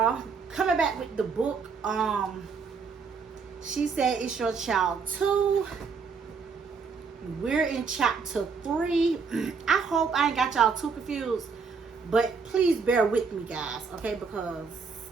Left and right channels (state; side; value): quieter; left; 5.3 dB